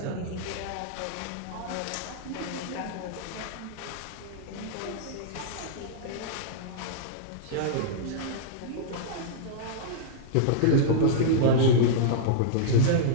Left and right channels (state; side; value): different; both; correlation -0.02